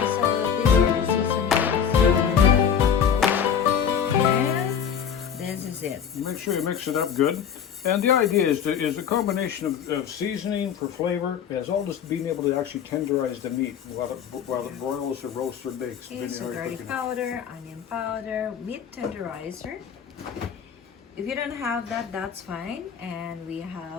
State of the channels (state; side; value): quieter; right; 7.9 dB